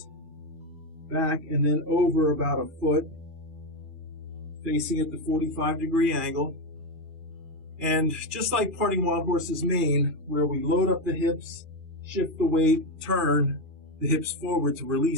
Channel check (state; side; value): late; left; 2.3 ms